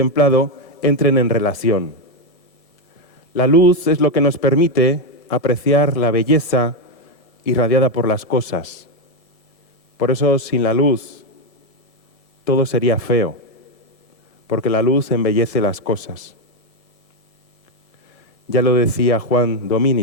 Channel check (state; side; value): late; right; 5.3 ms